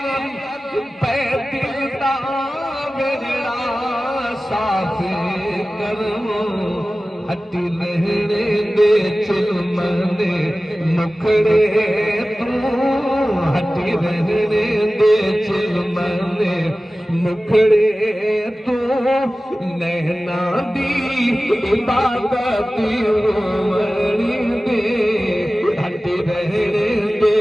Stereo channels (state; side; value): normal; both; correlation 0.96